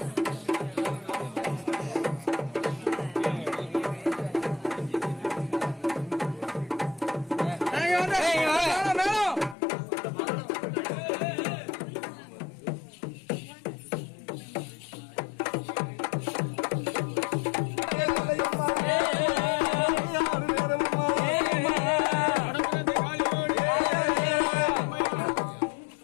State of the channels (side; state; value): right; drops out; at 9.6 s